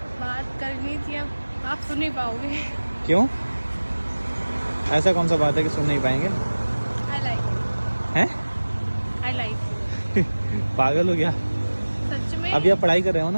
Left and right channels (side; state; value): both; inverted; correlation -1.00